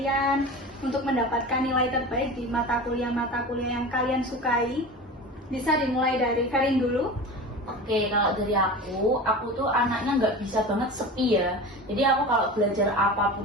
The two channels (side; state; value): both; normal; correlation 0.32